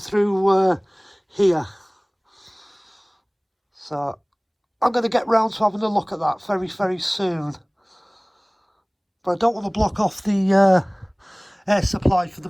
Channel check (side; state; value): both; identical; correlation 1.00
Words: here. So I'm going to get round to having a look at that very, very soon. But I don't want to block off the air supply for the